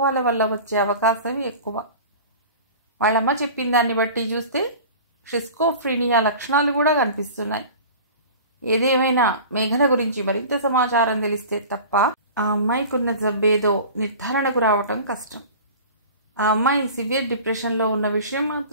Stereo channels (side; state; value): both; inverted; correlation -0.38